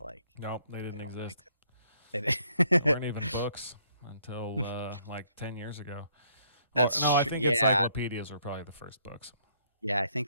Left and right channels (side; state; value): both; inverted; correlation -0.68